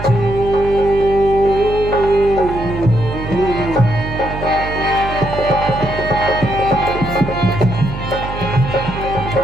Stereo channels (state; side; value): noise; right; hum, 8 dB below the sound